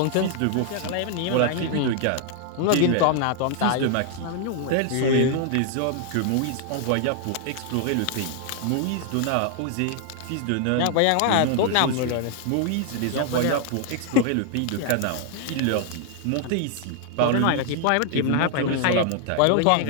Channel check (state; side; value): different; both; correlation 0.00